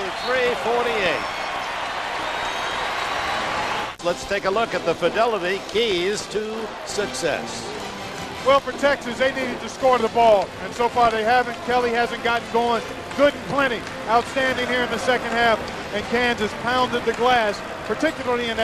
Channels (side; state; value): both; identical; correlation 1.00